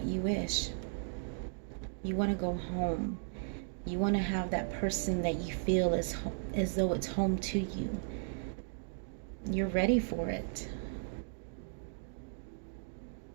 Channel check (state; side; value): silent; left; digital silence